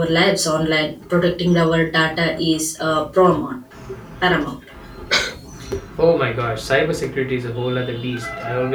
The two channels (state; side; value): identical; both; correlation 1.00